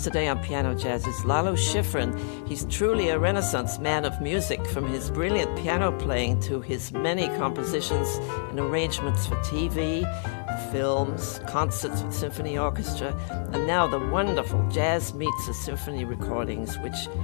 today on Piano Jazz is Lalo Schifrin. He's truly a Renaissance man of music, from his brilliant piano playing to his many compositions and arrangements for TV, films, concerts with symphony orchestra, and now the wonderful Jazz Meets a Symphony recordings, which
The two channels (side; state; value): right; silent; 60 dB below the other